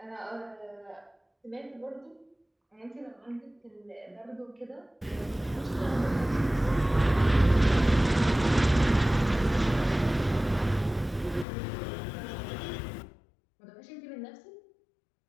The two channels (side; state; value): right; drops out; at 11.5 s